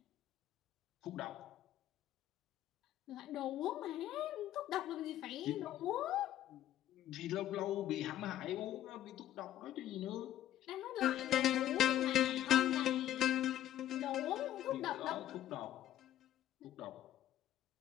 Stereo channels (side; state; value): right; quieter; 12.4 dB